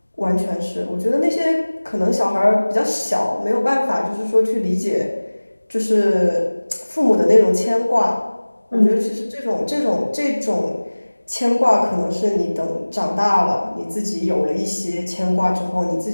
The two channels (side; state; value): both; inverted; correlation -1.00